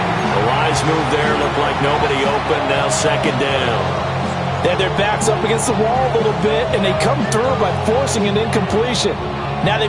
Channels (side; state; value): both; identical; correlation 1.00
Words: The wise move there. Looked like nobody open. Now 2nd down. They have their backs up against the wall a little bit, and they come through by forcing an incompletion. Now